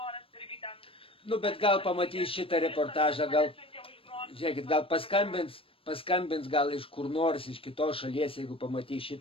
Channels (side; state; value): right; late; 0.27 ms